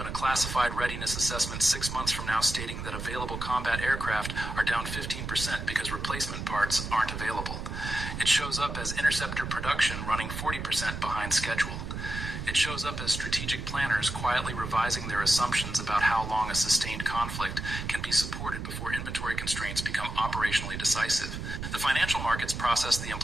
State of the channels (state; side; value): noise; right; rumble, 6 dB below the sound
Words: a classified readiness assessment 6 months from now stating that available combat aircraft are down 15% because replacement parts aren't available. It shows up as interceptor production running 40% behind schedule. It shows up as strategic planners quietly revising their assumptions about how long a sustained conflict can be supported before inventory constraints become operationally decisive. The financial markets process the